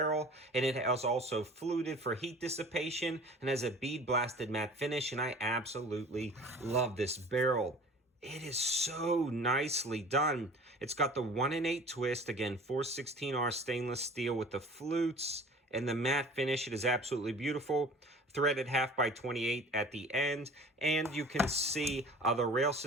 and it has also fluted for heat dissipation and has a bead blasted matte finish, and I absolutely love this barrel. It is so nicely done. It's got the 1-in-8 twist, again, 416R stainless steel with the flutes and the matte finish. It is absolutely beautiful. Threaded 1/2x28 at the end, and you can see the rail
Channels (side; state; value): both; normal; correlation 0.44